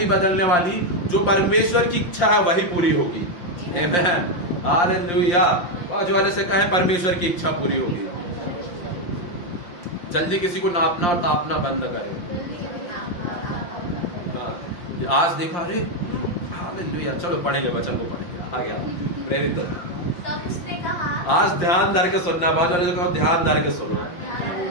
बदलने वाली। जो परमेश्वर की इच्छा है वही पूरी होगी। आमेन, हालेलुया। बाजू वाले से कहे परमेश्वर की इच्छा पूरी होगी। जल्दी किसी को नापना और तापना बंद करे। हाँ, आज देखा, अरे हालेलुया, चलो पढ़ेंगे, वचन को पढ़ेंगे। आ गया प्रेरित। आज ध्यान धर के सुनना, बाजू वाले से कहो ध्यान धर के सुनो,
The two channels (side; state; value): right; late; 5.7 ms